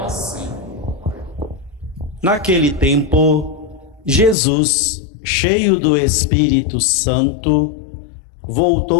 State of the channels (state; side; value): drops out; right; at 4.4 s